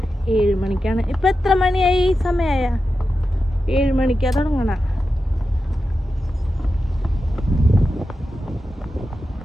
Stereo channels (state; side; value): normal; both; correlation 0.91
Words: 7 മണിക്കാണ്. ഇപ്പൊ എത്ര മണിയായി? സമയമായ 7 മണിക്കാ തുടങ്ങണ.